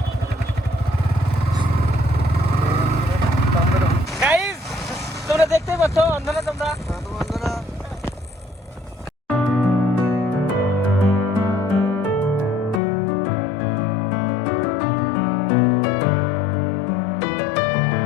গাইস, তোমরা দেখতেই পাচ্ছ অন্ধনা তোমরা।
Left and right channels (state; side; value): drops out; right; at 12.8 s